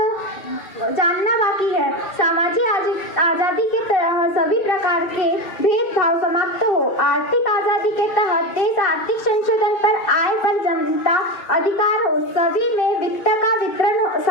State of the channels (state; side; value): late; right; 2.6 ms